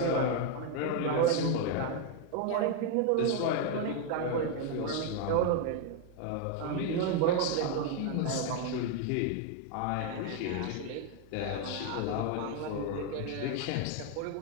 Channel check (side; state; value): both; different; correlation 0.01